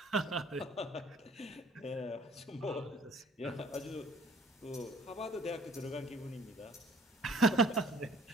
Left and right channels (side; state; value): both; normal; correlation 0.55